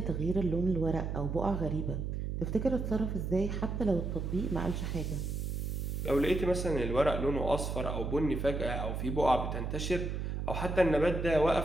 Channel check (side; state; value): right; noise; hum, 3 dB below the sound